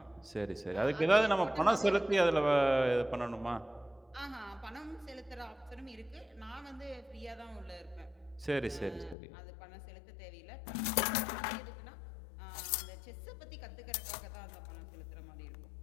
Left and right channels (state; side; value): drops out; right; at 9.2 s